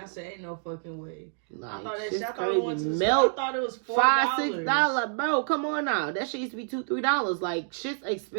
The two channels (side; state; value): left; silent; digital silence